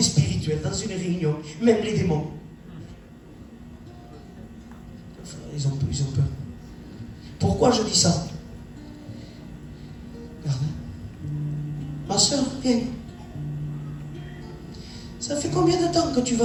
spirituel dans une réunion, même les démons. Ils ont peur. Pourquoi je dis ça? Regarde. Ma soeur, viens. Ça fait combien de temps que tu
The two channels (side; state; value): both; identical; correlation 1.00